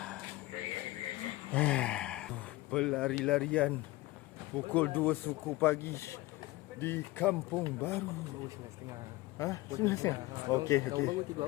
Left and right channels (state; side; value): quieter; right; 19.2 dB